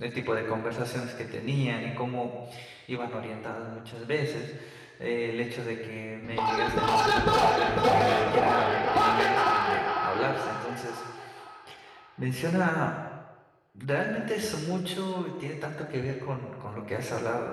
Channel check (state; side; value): identical; both; correlation 1.00